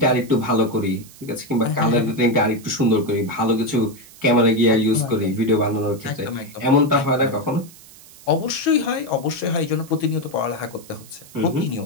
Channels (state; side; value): noise; right; hiss, 21 dB below the sound